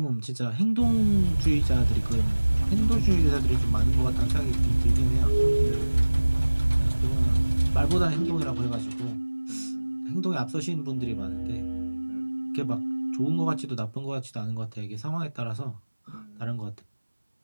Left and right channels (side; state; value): both; inverted; correlation -1.00